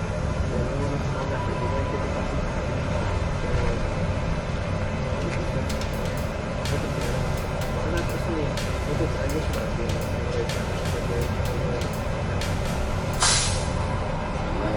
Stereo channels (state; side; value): identical; both; correlation 1.00